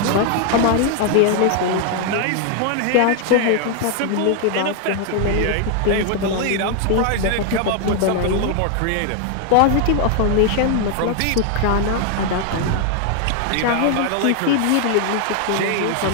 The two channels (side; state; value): both; different; correlation 0.01